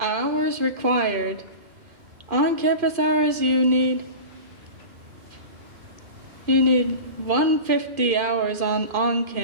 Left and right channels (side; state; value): left; late; 2.4 ms